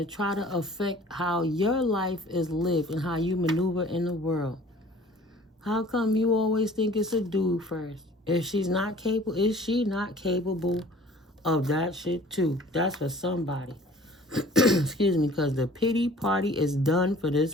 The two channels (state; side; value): normal; both; correlation 0.49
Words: try to affect how your life is lived and how you maneuver in the world. How come you always think it's a dude first? If she's not capable, is she not capable of that shit too? That's for somebody. Excuse me, because the pity party is done for